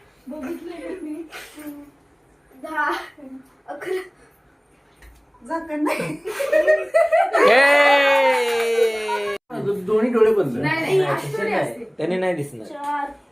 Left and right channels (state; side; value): identical; both; correlation 1.00